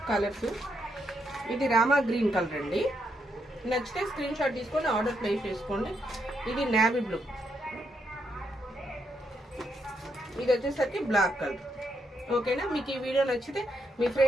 కలర్స్ ఇది రామా గ్రీన్ కలర్ అండి. నచ్చితే స్క్రీన్ షాట్ తీసుకొని ఆర్డర్ ప్లేస్ చేసుకోండి. ఇది నేవీ బ్లూ, ఇది వచ్చేసరికి బ్లాక్ కలర్. ఓకేనా? మీకు ఈ వీడియో నచ్చితే మీ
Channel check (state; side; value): normal; both; correlation 0.79